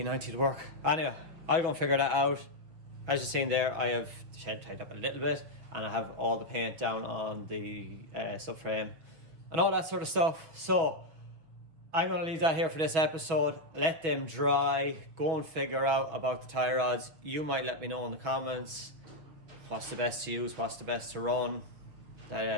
would work. Anyway, I'll go and figure that out. As you've seen there, I have the shed tied up a little bit, and I have all the paint down on the subframe and all that sort of stuff. So I'm going to leave that here for this episode. Let them dry. Go and figure out about the tie rods. You might let me know in the comments what's the best to use, what's the best to run. Do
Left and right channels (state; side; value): late; left; 6.5 ms